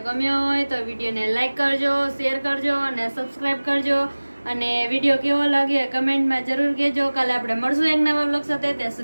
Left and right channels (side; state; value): both; inverted; correlation -1.00